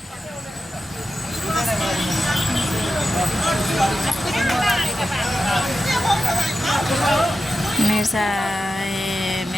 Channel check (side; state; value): both; normal; correlation 0.92